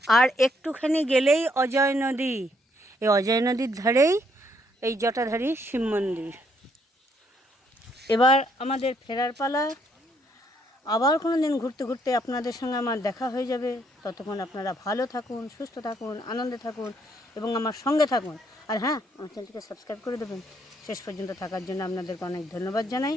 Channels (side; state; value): both; normal; correlation 0.71